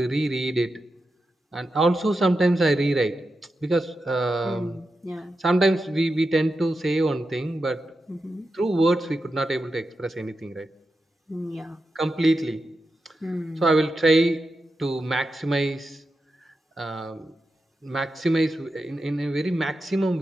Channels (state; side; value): normal; both; correlation 0.89